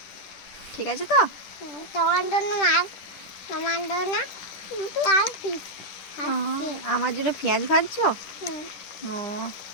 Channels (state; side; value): late; right; 10 ms